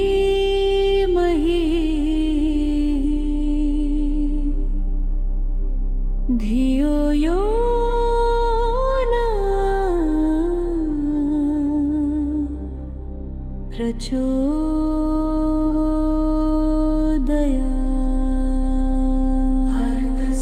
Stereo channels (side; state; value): both; identical; correlation 1.00